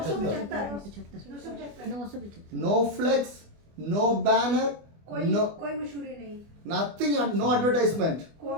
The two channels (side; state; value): left; late; 24 ms